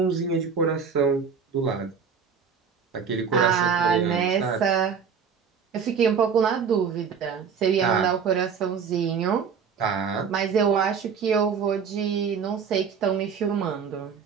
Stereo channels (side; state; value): left; quieter; 6.5 dB